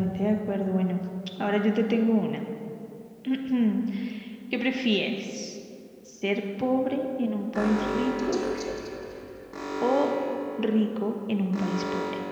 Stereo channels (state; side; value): identical; both; correlation 1.00